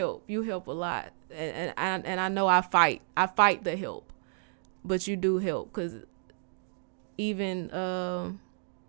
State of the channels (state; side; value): silent; left; digital silence